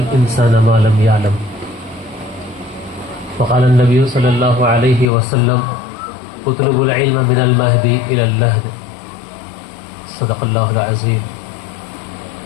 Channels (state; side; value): drops out; right; at 5.1 s